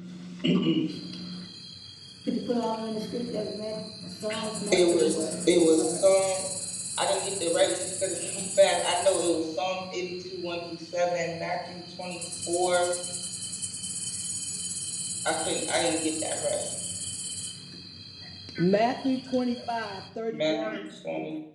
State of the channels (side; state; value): both; identical; correlation 1.00